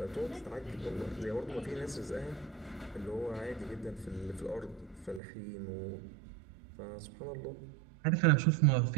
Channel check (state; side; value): drops out; left; at 5.2 s